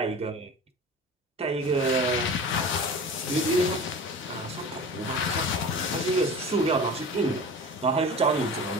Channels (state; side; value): normal; both; correlation 0.36